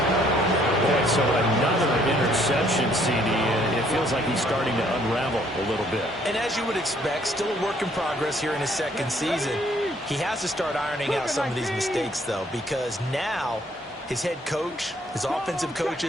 Boy, so another interception, CD. It feels like he's starting to unravel a little bit. And as you would expect, still a work in progress here in his 2nd season. He has to start ironing out some of these mistakes, though, because now his head coach, his offensive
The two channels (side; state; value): both; normal; correlation 0.64